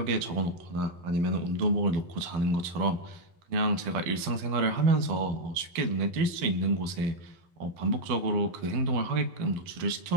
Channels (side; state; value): left; late; 12 ms